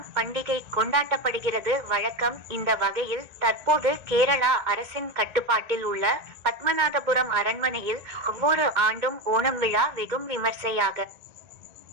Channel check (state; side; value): late; left; 1.9 ms